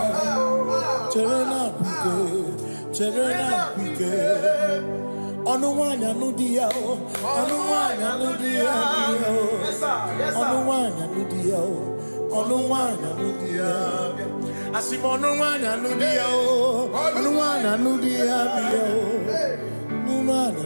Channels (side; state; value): both; inverted; correlation -1.00